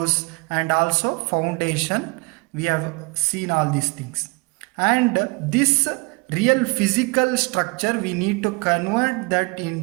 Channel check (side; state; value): left; quieter; 28.9 dB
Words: and also foundation. We have seen all these things, and this real physical structure we need to convert that